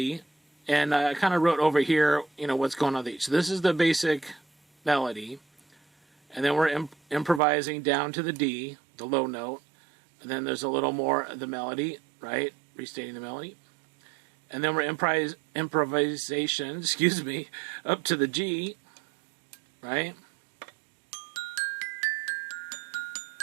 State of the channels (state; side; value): drops out; left; at 7.4 s